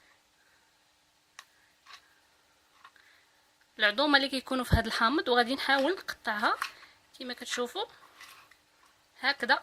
في هاد الحامض، وغادي نحاول نقطعها كما كتشوفوا هكذا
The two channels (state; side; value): identical; both; correlation 1.00